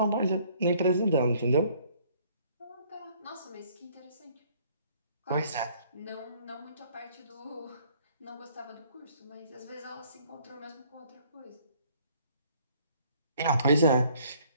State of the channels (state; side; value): inverted; both; correlation -0.61